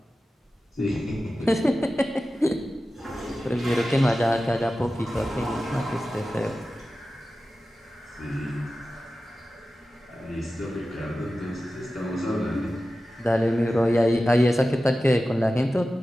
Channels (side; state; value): both; normal; correlation 0.94